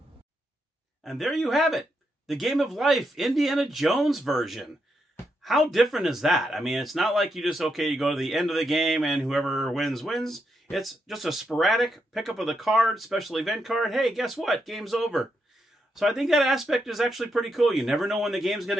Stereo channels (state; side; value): normal; both; correlation 0.82